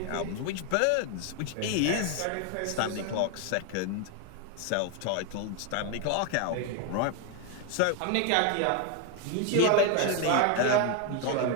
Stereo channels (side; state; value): both; different; correlation 0.01